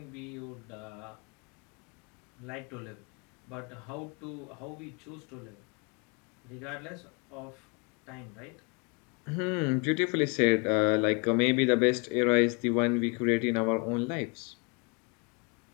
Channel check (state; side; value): quieter; right; 32.1 dB